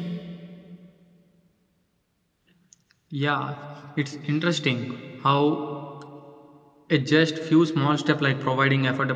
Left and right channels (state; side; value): identical; both; correlation 1.00